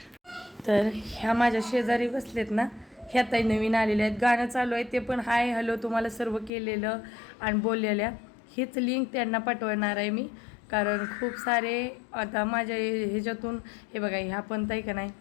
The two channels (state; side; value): drops out; right; at 6.5 s